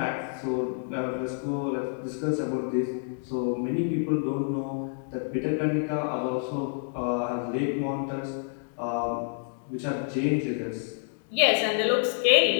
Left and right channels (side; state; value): right; silent; 59 dB below the other